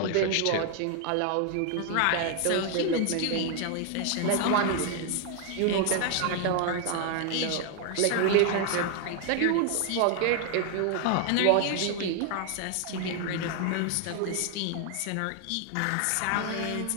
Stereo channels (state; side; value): different; both; correlation 0.00